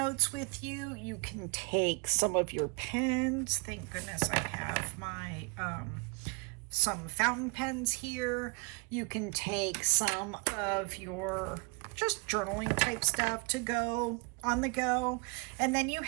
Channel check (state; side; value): quieter; left; 32.5 dB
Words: with you. You can take some of your pens. Thank goodness I have my some fountain pens here. You can take some of your just journaling type stuff to go on the go. And then you